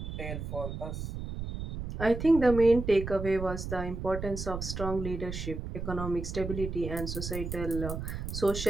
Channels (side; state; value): right; noise; rumble, 6 dB below the sound